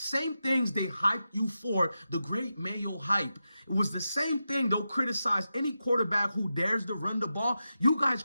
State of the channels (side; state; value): both; inverted; correlation -0.90